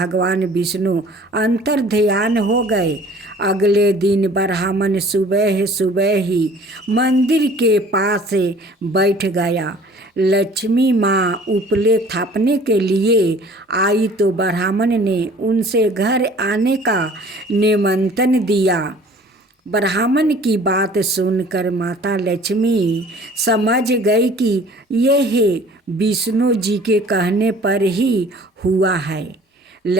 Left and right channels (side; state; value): both; normal; correlation 0.50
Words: विष्णु अंतर्ध्यान हो गए। अगले दिन ब्राह्मण सुबह सुबह ही मंदिर के पास बैठ गया। लक्ष्मी माँ उपले थापने के लिए आई तो ब्राह्मण ने उनसे घर आने का निमंत्रण दिया। ब्राह्मण की बात सुनकर माता लक्ष्मी समझ गई कि यह विष्णु जी के कहने पर ही हुआ है।